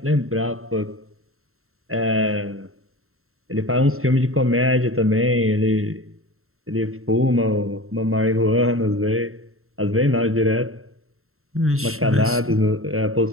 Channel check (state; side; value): late; left; 0.62 ms